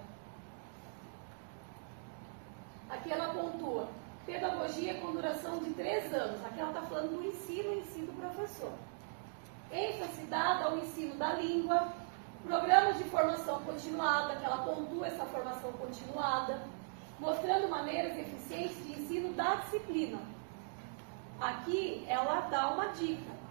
Aqui ela pontua, pedagogia com duração de 3 anos. Aqui ela está falando do ensino em si do professor. ênfase dada ao ensino da língua, programas de formação continuada, que ela pontua essa formação continuada, mostrando maneiras eficientes de ensino da disciplina. Aqui ela dá uma dica,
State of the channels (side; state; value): left; silent; digital silence